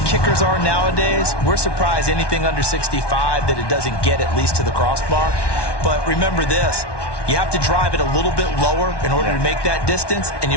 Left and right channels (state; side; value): late; right; 1.1 ms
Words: kickers are nowadays, we're surprised anything under 65 that it doesn't get at least to the crossbar. But remember this, you have to drive it a little bit lower in order to make that distance, and you